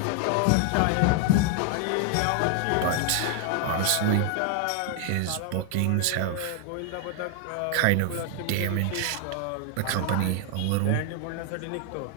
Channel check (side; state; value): both; different; correlation 0.00